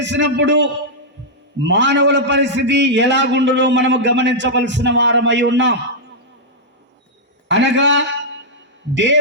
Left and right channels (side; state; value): both; normal; correlation -0.08